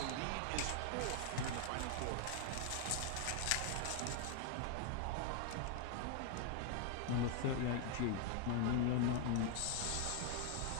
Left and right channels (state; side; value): different; both; correlation 0.00